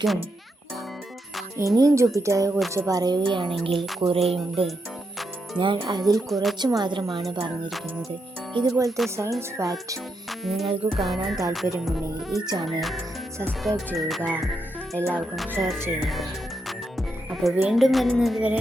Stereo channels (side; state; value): both; normal; correlation 0.82